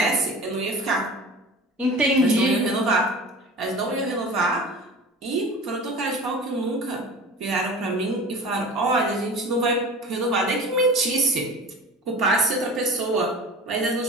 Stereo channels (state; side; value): normal; both; correlation 0.37